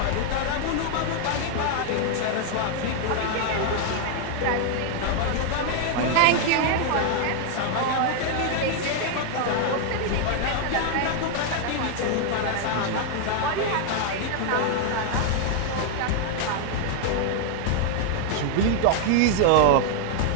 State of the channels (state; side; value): different; both; correlation 0.00